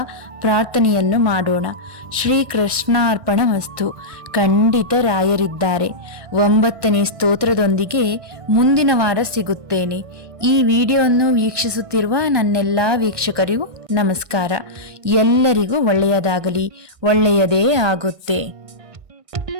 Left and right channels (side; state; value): left; late; 1.2 ms